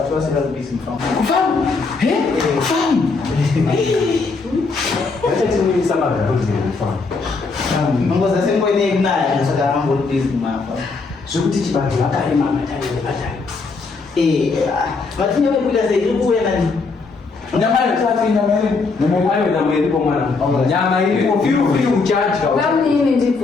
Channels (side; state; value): right; quieter; 4.2 dB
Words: vasira bhizi mufamu vachatimuyisa magaroziremufamu nongoza sengoinekunaya saka vambori bhizi mumafa zvekuti chibantu vakarema mataivatari matinye vaikuita sei iri kuuya nani nyama iripo mwana nyama iripo firufiri uchadya Kamini